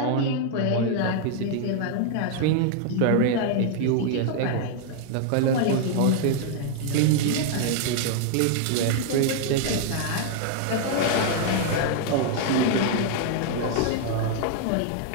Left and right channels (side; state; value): both; different; correlation 0.00